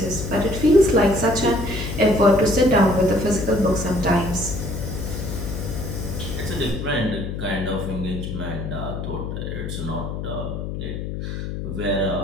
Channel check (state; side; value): noise; left; hum, 5 dB below the sound